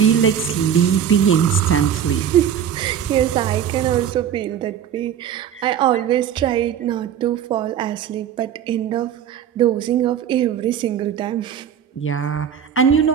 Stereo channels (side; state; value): left; quieter; 9.0 dB